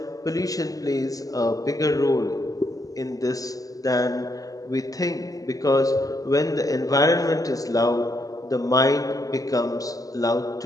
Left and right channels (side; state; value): right; late; 0.17 ms